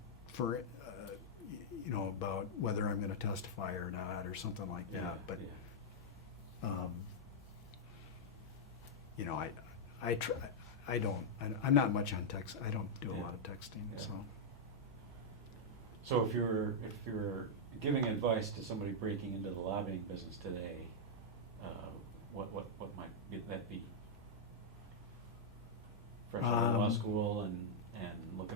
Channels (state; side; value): normal; both; correlation -0.05